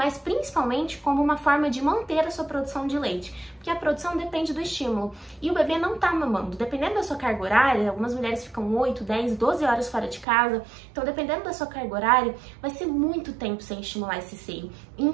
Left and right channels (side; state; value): left; drops out; at 10.2 s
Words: principalmente como uma forma de manter a sua produção de leite. Porque a produção depende do estímulo. E o bebê não tá mamando. Dependendo da sua carga horária, algumas mulheres ficam 8, 10, 12 horas fora de casa. Então, dependendo da sua carga horária, vai ser muito tempo sem estimular esse seio.